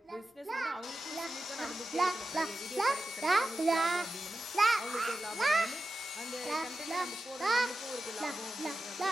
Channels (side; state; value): both; normal; correlation 0.92